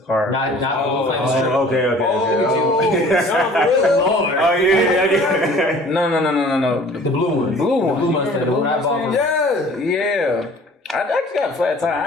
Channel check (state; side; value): normal; both; correlation 0.49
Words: Not Blue Flame. Okay. Lord. Oh, yeah. No. The blue one. Blue one. The blue Mustang. The one I bought from. Yeah. I actually got a flat tire.